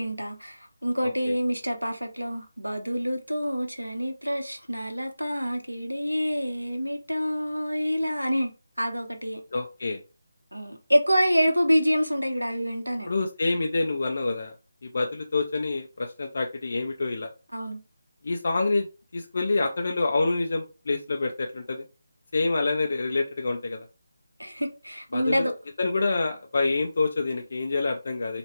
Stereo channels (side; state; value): both; inverted; correlation -0.95